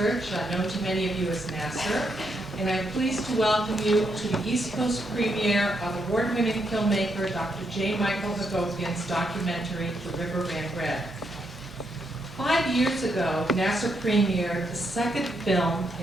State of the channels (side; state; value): both; normal; correlation 0.79